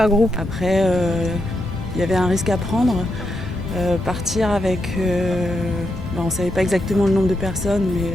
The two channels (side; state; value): both; normal; correlation 0.83